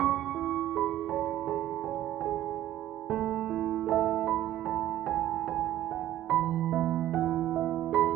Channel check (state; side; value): quieter; left; 13.1 dB